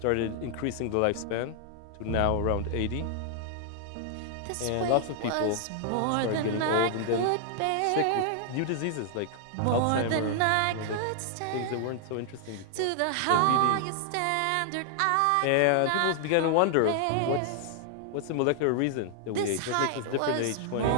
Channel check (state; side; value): different; both; correlation 0.00